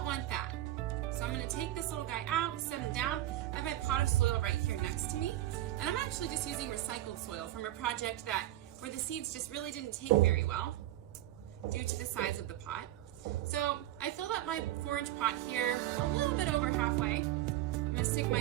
want that. So I'm going to take this little guy out, set him down. I have my pot of soil right here next to me. And I'm actually just using recycled soil from a project where the seeds just really didn't take very well due to the size of the pot. So I filled up my 4-inch pot here a little bit over halfway. I'm going to stick my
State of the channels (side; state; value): left; quieter; 14.5 dB